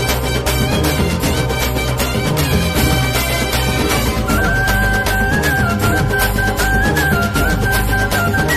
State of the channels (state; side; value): identical; both; correlation 1.00